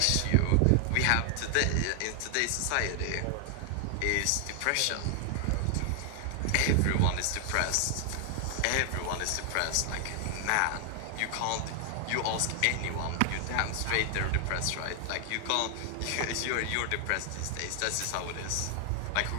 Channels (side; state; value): both; different; correlation 0.00